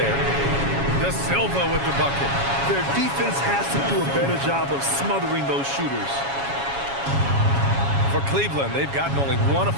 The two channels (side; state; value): left; late; 7.2 ms